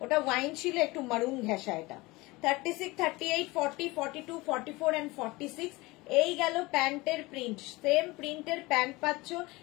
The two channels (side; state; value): right; quieter; 22.1 dB